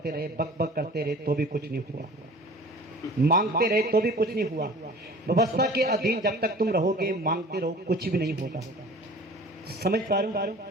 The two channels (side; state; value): both; normal; correlation 0.44